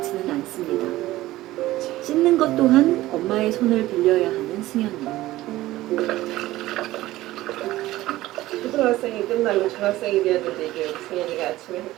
않습니다. 씻는 것 또한 엄마의 손을 빌려야 하는 승현이. 초등학생이 끝나고 중학생이 되었는데 이제 우리 승현이가 아침에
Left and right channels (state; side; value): quieter; left; 16.5 dB